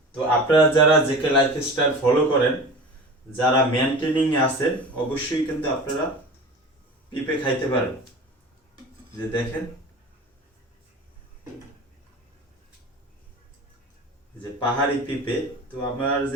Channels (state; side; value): normal; both; correlation 0.35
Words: তো আপনারা যারা জেকে লাইফস্টাইল ফলো করেন, যারা মেনটেনিং এ আছেন, অবশ্যই কিন্তু আপনারা পেঁপে খাইতে পারেন। যে দেখেন, যে পাহাড়ি পেঁপে। তো আমার